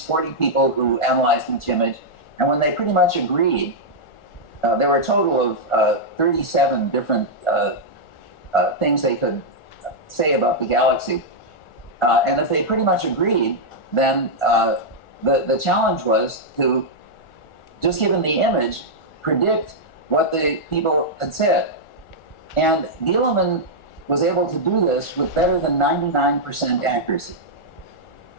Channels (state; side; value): late; right; 1.4 ms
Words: 40 people who analyzed each image. And when they pretty much agreed, there were a total of 37 different things they could say about the galaxy. And if they pretty much agreed, then the challenge was to, just given the image, predict what the people had said. And Dieleman was able to do this with better than 99% accuracy.